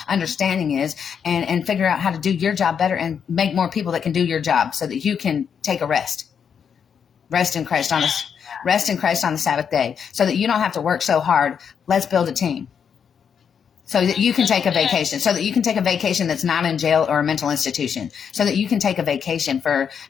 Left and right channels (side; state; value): right; quieter; 7.3 dB